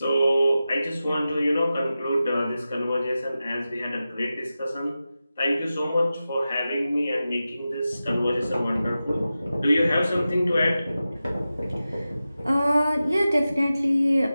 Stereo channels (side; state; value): both; inverted; correlation -0.93